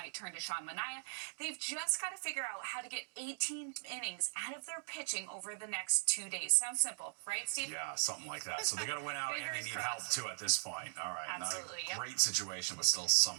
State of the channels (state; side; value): silent; left; digital silence